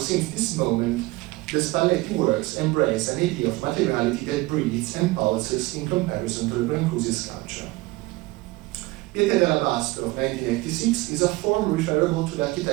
this moment, the Spalletti works embrace an idea of materiality that breathes and pulses in comparison to the Brancusi sculpture. Pietra d'Alabastro of 1986 is a form referable to the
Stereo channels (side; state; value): left; quieter; 20.8 dB